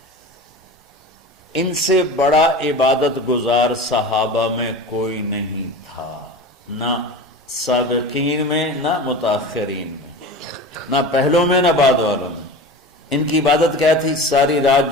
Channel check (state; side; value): normal; both; correlation 0.32